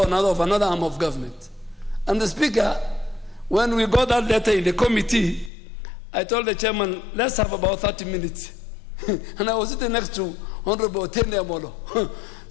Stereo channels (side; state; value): right; drops out; at 5.5 s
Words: another of another arm of government. And the Speaker, when we got that letter in the committee, I told the chairman, let's have about 30 minutes. And I was sitting next to Honorable Tende Amolo,